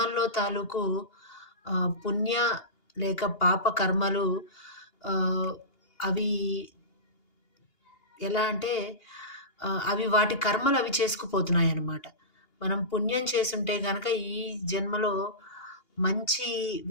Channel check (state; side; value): late; right; 2.8 ms